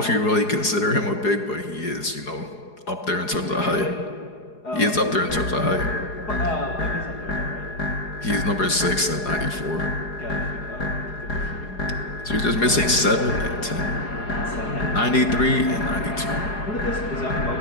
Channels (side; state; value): right; late; 4.8 ms